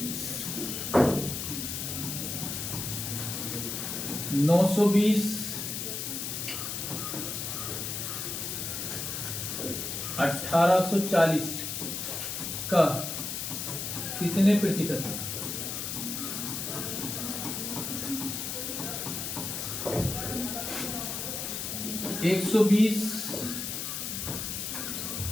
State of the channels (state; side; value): noise; left; hiss, 4 dB below the sound